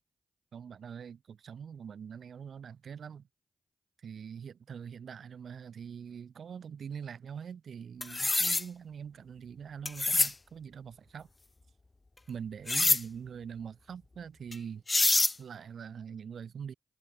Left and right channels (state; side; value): normal; both; correlation 0.95